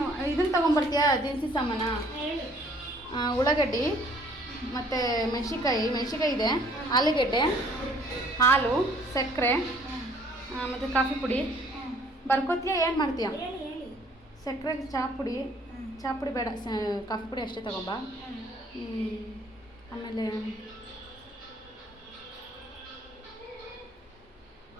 ಇದನ್ನು ತೊಗೊಂಬರ್ತೀಯಾ? ದಿನಸಿ ಸಾಮಾನ, ಉಳ್ಳಾಗಡ್ಡಿ ಮತ್ತು ಮೆಣಸಿನ್ಕಾಯಿ ಇದೆ, ಆಲೂಗೆಡ್ಡೆ, ಹಾಲು, ಸಕ್ಕರೆ ಮತ್ತು ಕಾಫಿ ಪುಡಿ. ಬರ್ಕೋತೀಯಾ? ಏನು ಮಾಡ್ತೀಯ? ಸಕ್ಕರೆಗೆ ಚಹಾ ಪುಡಿ ಬೇಡ, ಕಾಫಿ ಪುಡಿ ಅಷ್ಟೇ ತಗೊಂಬ. ಆಮೇಲೆ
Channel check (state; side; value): normal; both; correlation 0.59